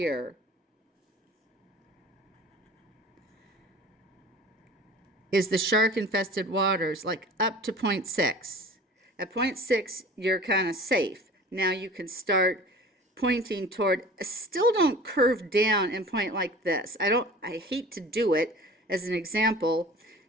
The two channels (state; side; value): normal; both; correlation 0.42